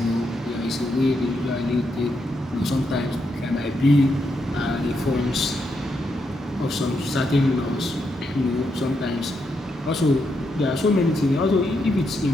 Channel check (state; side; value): normal; both; correlation 0.81